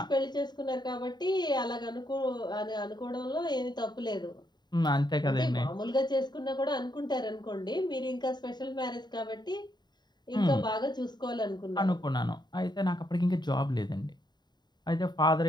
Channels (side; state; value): right; late; 0.21 ms